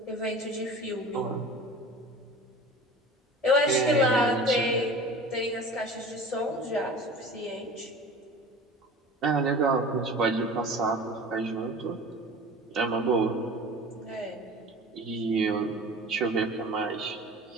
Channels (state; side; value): normal; both; correlation 0.38